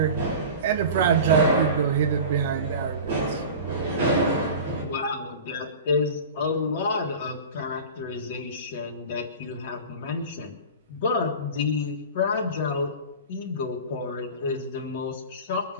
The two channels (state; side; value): inverted; both; correlation -0.33